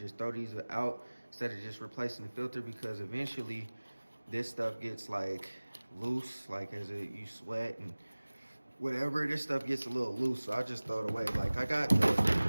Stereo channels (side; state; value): both; inverted; correlation -1.00